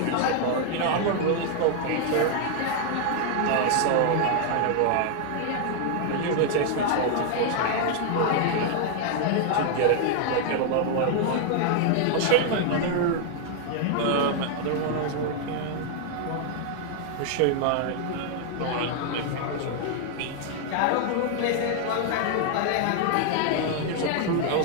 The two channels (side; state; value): both; different; correlation 0.00